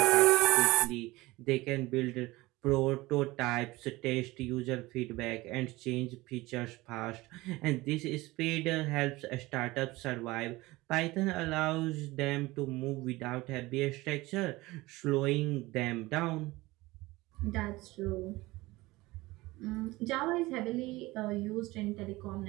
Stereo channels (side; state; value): left; quieter; 20.3 dB